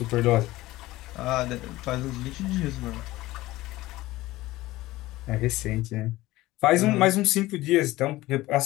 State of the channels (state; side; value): quieter; right; 17.8 dB